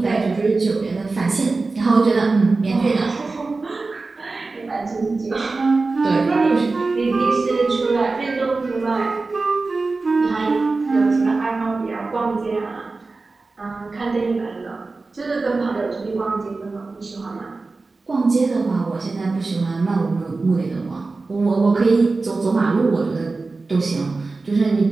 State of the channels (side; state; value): left; quieter; 3.7 dB